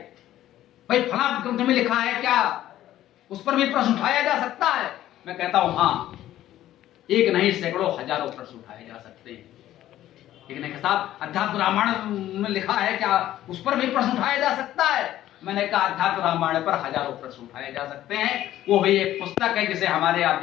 भाई फला ग्रंथ में लिखा है क्या, उस पर भी प्रश्न उठाया जा सकता है। मैं कहता हूं हाँ, एक नहीं सैकड़ों हजारों प्रश्न उठाए जा सकते हैं। एक नहीं साहब अध्यात्म रामायण में लिखा है क्या, उस पर भी प्रश्न उठाया जा सकता है। मैंने कहा अध्यात्म रामायण पर हजारों प्रश्न उठाए जा सकते हैं, वो भी एक पुस्तक है जिसे हमारे आप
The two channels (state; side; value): quieter; right; 13.3 dB